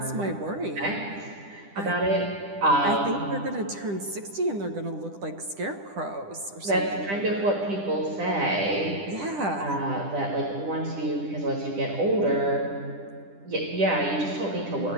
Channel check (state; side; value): late; left; 10 ms